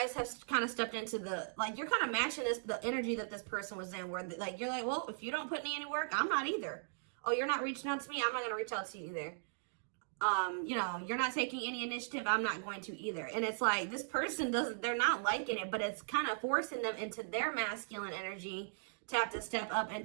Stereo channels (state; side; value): silent; left; digital silence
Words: have kind of stepped into the, like, you're kind of matching the energy that this person was in, where like, you're like, well, if you don't put me any work, I'm not either. Oh, you're not reaching out to me, I'm not going to reach out to you either. You know, you're not taking any initiative, I'm not going to either. And it's like, this person they're not liking it, but it's kind of forcing them into their masculine energy to have to step up and